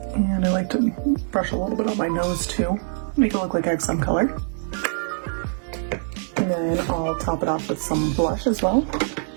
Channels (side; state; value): left; silent; 63 dB below the other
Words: And I like to brush a little bit on my nose too, make it look like I have some color. And then I'll top it off with some blush as well.